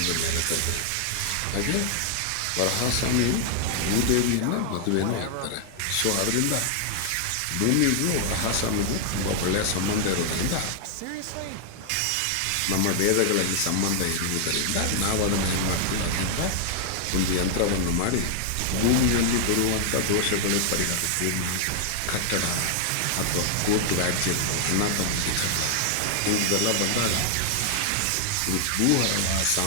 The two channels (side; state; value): both; different; correlation 0.00